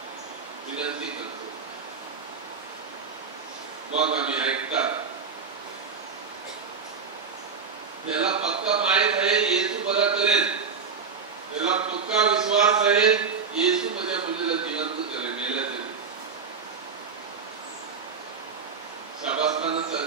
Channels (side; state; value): left; quieter; 5.6 dB